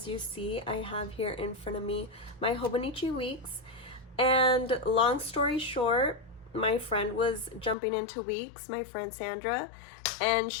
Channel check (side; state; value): right; drops out; at 7.8 s